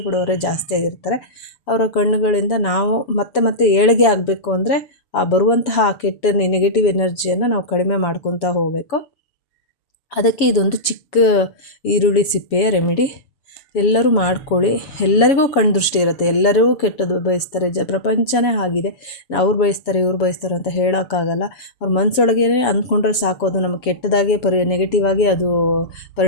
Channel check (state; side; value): late; right; 7.1 ms